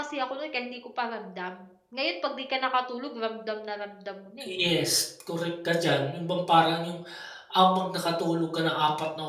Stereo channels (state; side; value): identical; both; correlation 1.00